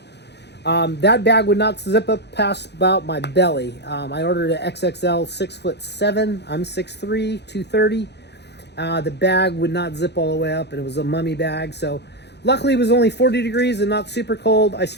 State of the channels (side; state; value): right; late; 0.49 ms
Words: That bag would not zip up past about my belly. I ordered an XXL 6'7". I'm 6'3", 230. The bag would not zip all the way up, and it was a mummy bag. So luckily it was only 40 degrees and not super cold. I